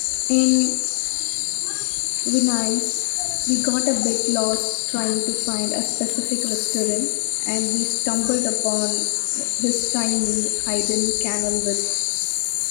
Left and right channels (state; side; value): silent; right; digital silence